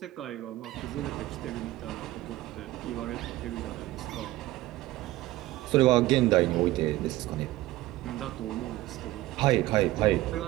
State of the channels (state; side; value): quieter; left; 17.2 dB